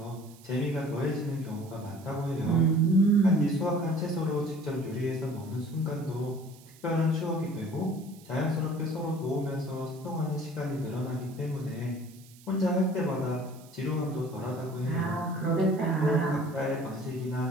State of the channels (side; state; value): right; noise; hiss, 24 dB below the sound